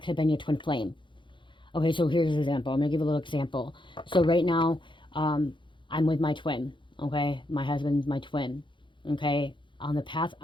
have been your twin flame. Okay, so here's an example. I'm gonna give a little example. So right now, I'm with my twin. Okay, my husband's my twin. Okay, on the path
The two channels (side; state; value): right; late; 0.23 ms